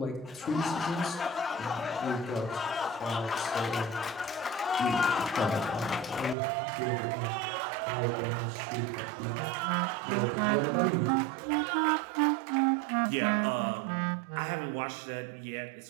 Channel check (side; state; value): left; drops out; at 6.4 s